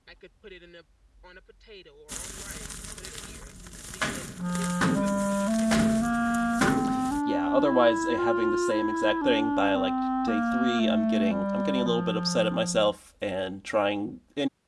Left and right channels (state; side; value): identical; both; correlation 1.00